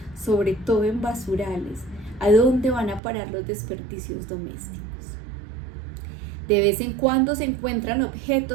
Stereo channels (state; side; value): drops out; left; at 3.0 s